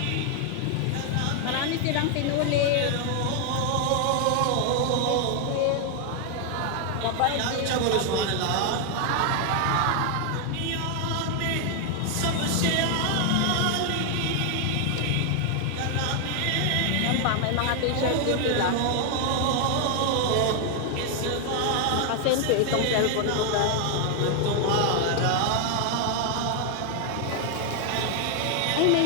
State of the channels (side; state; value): both; different; correlation 0.00